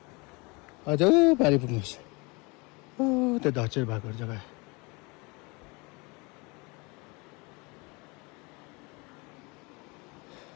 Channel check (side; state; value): right; quieter; 27.6 dB